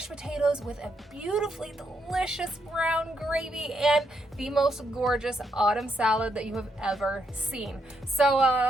potatoes with a beautifully delicious brown gravy, and the most gorgeous autumn salad that you have ever seen. So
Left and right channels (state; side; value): normal; both; correlation 0.78